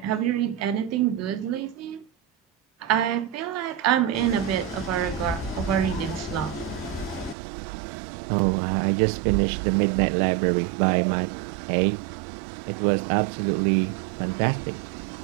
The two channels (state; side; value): drops out; left; at 7.4 s